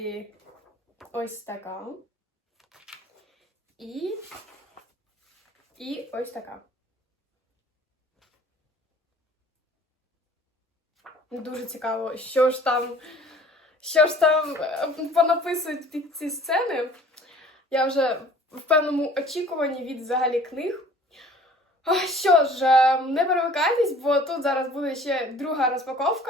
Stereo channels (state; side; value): normal; both; correlation 0.50